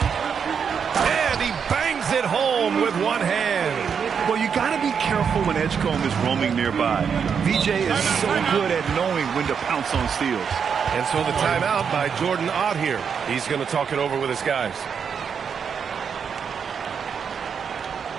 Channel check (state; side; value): quieter; left; 6.8 dB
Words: And he bangs it home with one hand. Well, you got to be careful when Edgecombe is roaming nearby. VJ is so good at knowing when to pounce on steals. And so the timeout by Jordan Ott here. He's going to talk it over with his guys.